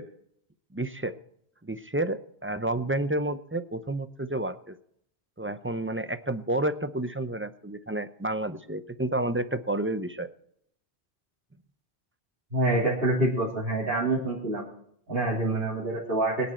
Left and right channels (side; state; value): both; normal; correlation 0.10